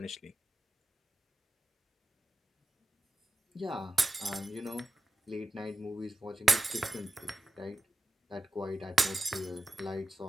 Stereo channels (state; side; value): normal; both; correlation 0.91